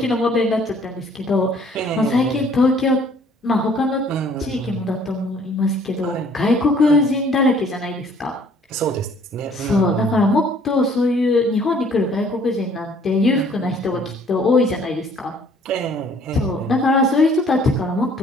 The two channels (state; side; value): normal; both; correlation 0.58